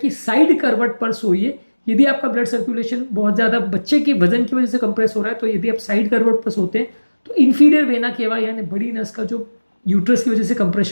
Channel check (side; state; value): both; inverted; correlation -1.00